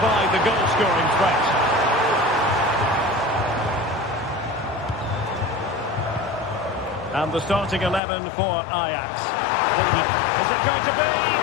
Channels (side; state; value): right; drops out; at 8.0 s